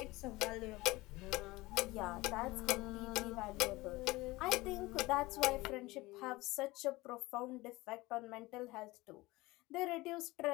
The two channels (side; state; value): right; quieter; 20.7 dB